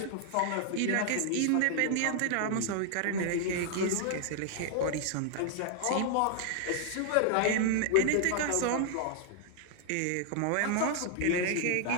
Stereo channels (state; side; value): different; both; correlation 0.00